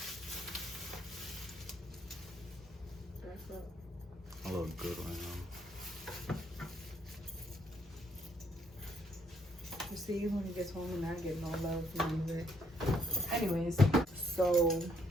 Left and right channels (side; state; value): both; normal; correlation 0.70